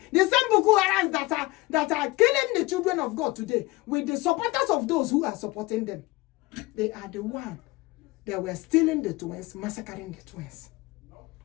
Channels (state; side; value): quieter; right; 21.1 dB